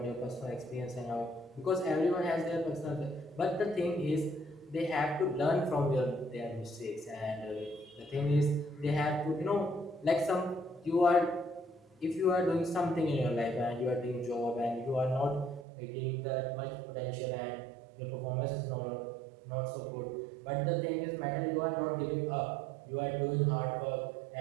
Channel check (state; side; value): drops out; left; at 15.7 s